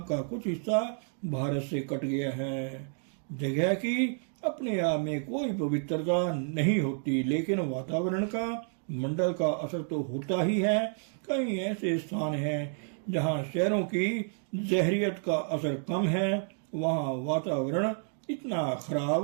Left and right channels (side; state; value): left; silent; 56 dB below the other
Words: का कुछ हिस्सा भारत से कट गया है। जगह की अपने आप में कोई पवित्रता नहीं होती, लेकिन वातावरण का, मंडल का असर तो होता ही है। कई ऐसे स्थान हैं जहां शहरों की जहरियत का असर कम है, वहां वातावरण इतना